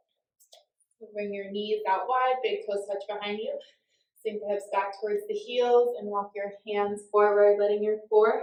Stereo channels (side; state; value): both; identical; correlation 1.00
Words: So bring your knees out wide, big toes touch behind you. Sink the hips back towards the heels and walk your hands forward, letting your